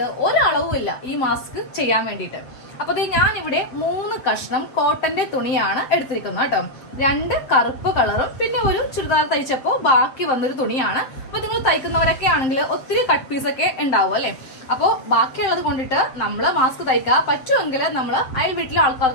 ഒരളവും ഇല്ല ഈ മാസ്ക് ചെയ്യാൻ വേണ്ടിയിട്ട്. അപ്പൊ ഞാൻ ഇവിടെ 3 കഷ്ണം കോട്ടന്റെ തുണിയാണ് എടുത്തിരിക്കുന്നത് കേട്ടോ. 2 കറുപ്പ് കളറും പിന്നെ ഒരു ചുരിദാർ തയ്ച്ചപ്പോ ബാക്കി വന്നൊരു തുണിയാണ്. അപ്പൊ നിങ്ങൾ തയ്ക്കുന്നവരൊക്കെ ആണെങ്കിൽ ഒത്തിരി കട്ട് പീസ് ഒക്കെ ഉണ്ടാവും അല്ലെ. അപ്പോൾ ബാക്കിയുള്ളത് കൊണ്ടിട്ട് നമ്മള് മാസ്ക് തയ്ക്കുക. പറ്റുമെങ്കിൽ നമ്മൾ അയൽ വീട്ടിലെ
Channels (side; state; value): right; late; 7.6 ms